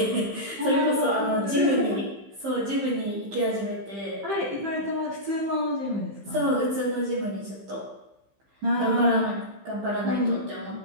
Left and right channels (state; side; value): late; left; 15 ms